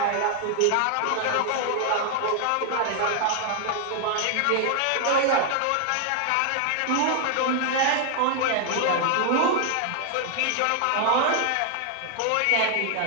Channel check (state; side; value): different; both; correlation 0.00